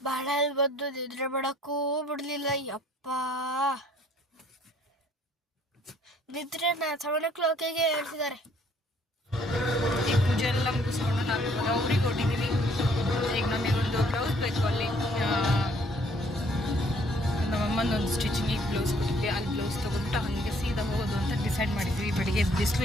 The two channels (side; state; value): both; normal; correlation 0.62